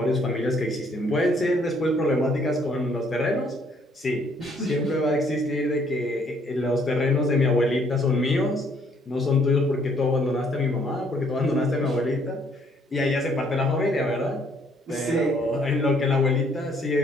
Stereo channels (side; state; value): both; normal; correlation 0.65